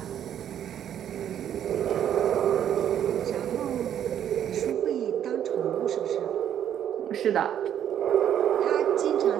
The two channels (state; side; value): quieter; left; 10.0 dB